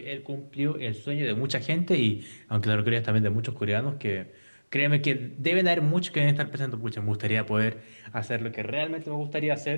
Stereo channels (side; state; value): both; inverted; correlation -1.00